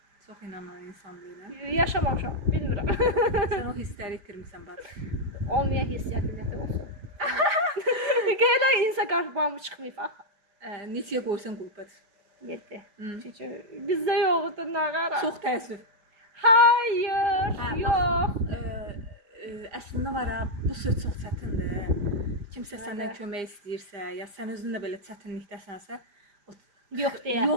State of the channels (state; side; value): late; left; 4.8 ms